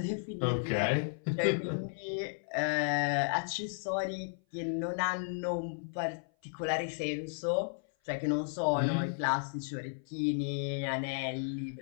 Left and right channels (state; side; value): silent; right; 55 dB below the other